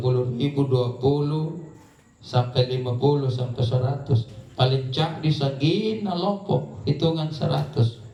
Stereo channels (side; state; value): both; identical; correlation 1.00